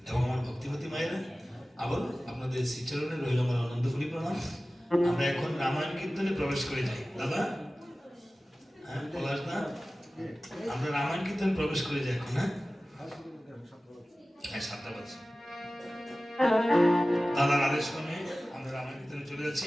এবং আমার ভক্তিপতি মায়েরা আবার আপনাদের শ্রীচরণে রইল আমার আনন্দ করি প্রণাম। আমরা এখন রামায়ণ কীর্তনে প্রবেশ করে যাই। দাদা, হ্যাঁ পলাশ দা, আমরা রামায়ণ কীর্তনে প্রবেশ করে যাই এখন। হ্যাঁ হ্যাঁ 7টা বাজে। দাদার আদেশ ক্রমে আমরা রামায়ণ কীর্তনে চলে যাচ্ছি।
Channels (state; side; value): normal; both; correlation 0.96